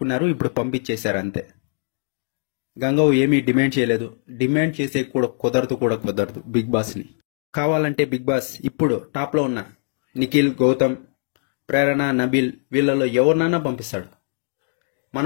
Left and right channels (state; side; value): silent; right; 62 dB below the other